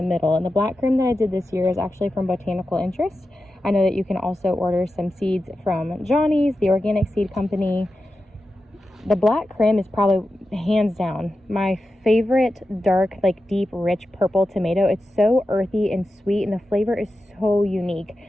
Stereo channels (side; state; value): both; normal; correlation 0.91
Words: middle. And the black creme that I did this year is actually from Botanical Interest. I know that you can also order some seeds from Johnny's, the organic seed company. The black creme is probably hands down my favorite dark, like deep, rich purple tomato. It's so earthy and sweet, and the flavor is so unique.